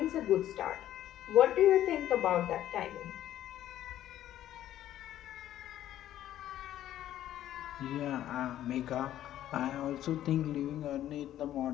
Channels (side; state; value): right; quieter; 12.4 dB